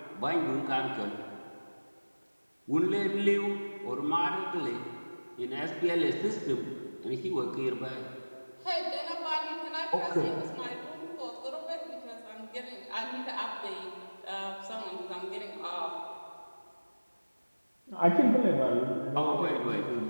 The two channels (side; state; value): both; inverted; correlation -1.00